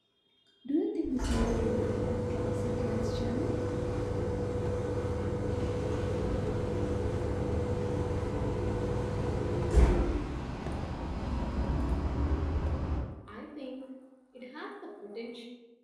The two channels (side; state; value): both; identical; correlation 1.00